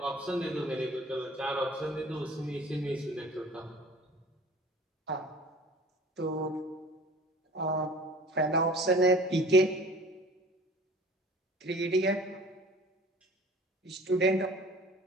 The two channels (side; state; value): both; normal; correlation 0.46